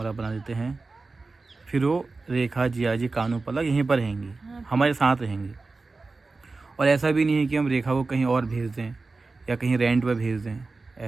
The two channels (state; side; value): quieter; left; 3.8 dB